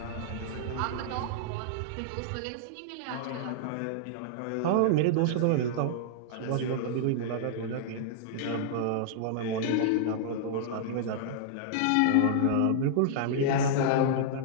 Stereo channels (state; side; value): different; both; correlation -0.01